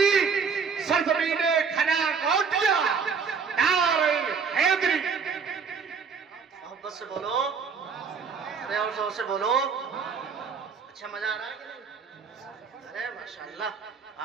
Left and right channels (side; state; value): left; quieter; 5.8 dB